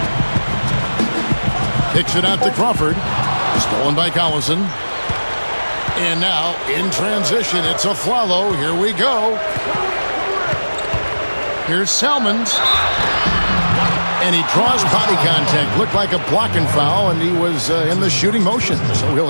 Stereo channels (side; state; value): both; inverted; correlation -1.00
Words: Kicks it out to Crawford. Stolen by Collison. And now, in transition, it's Afflalo. Here we go. Here's Salmons. And he draws body contact. Looked like a blocking foul, and he was in the shooting motion. So he'll